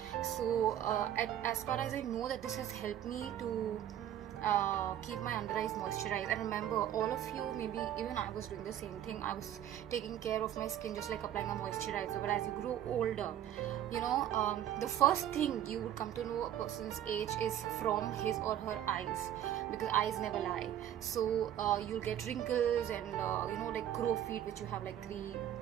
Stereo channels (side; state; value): left; quieter; 11.1 dB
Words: So as far as I know, that this has helped me to keep my under eyes moisturized. And remember, all of you, maybe even I was doing the same thing. I was taking care of my skin just like applying a moisturizer. But as you grow older, you know, the first thing you would come to know a person's age is from his or her eyes, because eyes never lie. So you'll get wrinkles and you know, like grow feet, which you have like 3